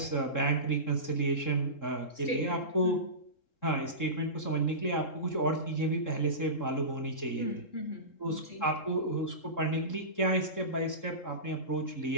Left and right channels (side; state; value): right; late; 3.7 ms